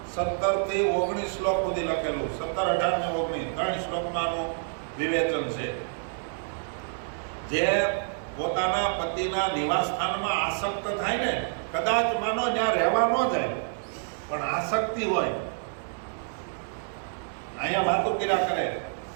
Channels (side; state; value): left; silent; digital silence